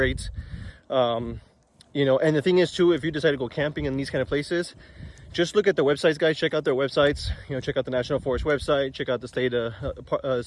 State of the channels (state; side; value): identical; both; correlation 1.00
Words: You know, and the thing is too, if you decide to go camping in these kind of places, just look at their websites, guys. Check out their websites. You know, check out the National Forest website, check out the